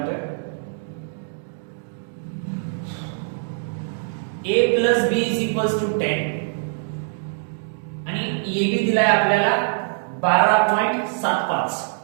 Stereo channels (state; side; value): silent; left; digital silence